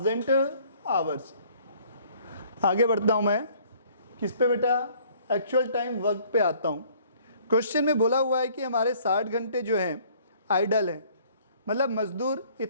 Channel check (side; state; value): both; inverted; correlation -0.58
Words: आवर्स। आगे बढ़ता हूँ मैं, किस पे बेटा, एक्चुअल टाइम वर्क पे आता हूँ। क्वेश्चन में बोला हुआ है कि हमारे 60 घंटे जो हैं आइडल हैं, मतलब मजदूर